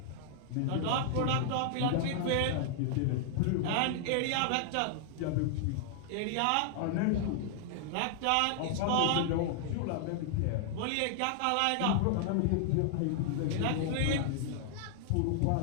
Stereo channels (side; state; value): both; different; correlation 0.00